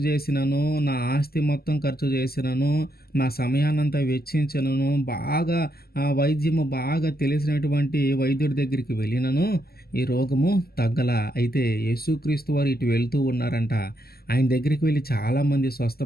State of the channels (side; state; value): right; late; 0.45 ms